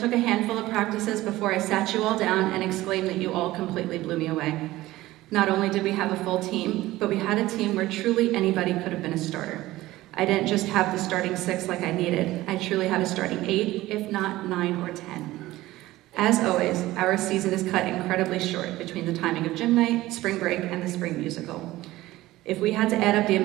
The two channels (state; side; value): quieter; left; 17.1 dB